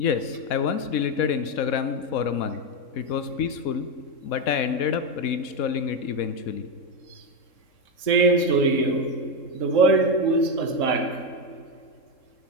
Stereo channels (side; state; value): right; late; 3.7 ms